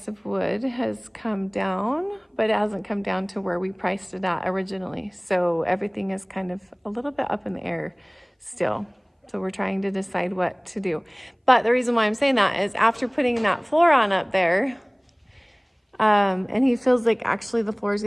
of wood has come down, but it hasn't come down to where we priced it at originally. So everything is kind of a little bit up in the air still. So we're trying to decide what to do. But the reason why I'm saying that is after putting that floor on up there, and he feels like actually the floor is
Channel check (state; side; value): identical; both; correlation 1.00